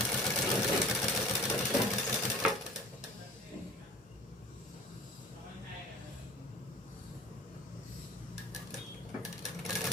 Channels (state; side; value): normal; both; correlation 0.44